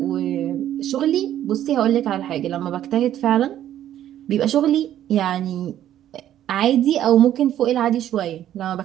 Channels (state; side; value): quieter; left; 11.7 dB